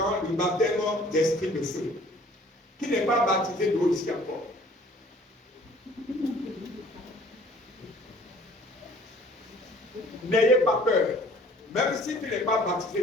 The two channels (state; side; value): normal; both; correlation 0.54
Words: le baptême d'esprit de feu, qui n'est pas baptisé d'eau ici encore. N'ayez pas peur. Même si tu n'es pas